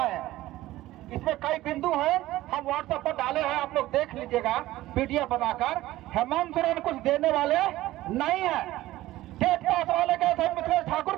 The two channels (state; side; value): quieter; left; 16.2 dB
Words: इसमें कई बिंदु हैं, हम व्हाट्सएप पर डाले हैं, आप लोग देख लीजिएगा पीडीएफ बनाकर। हेमंत सोरेन कुछ देने वाले नहीं है। टेट पास वाले गए थे मिथिलेश ठाकुर